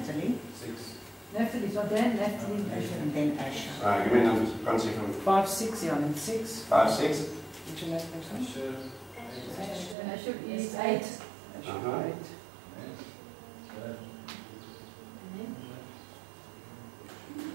Naphtali, so Dan, Naphtali, And then Asher. Alright, give me numbers. Can't see from 5, 6, yeah, and 6. 5, 6. Which is next one? Asher is 8. Uh-huh. 8.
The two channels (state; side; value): drops out; left; at 10.0 s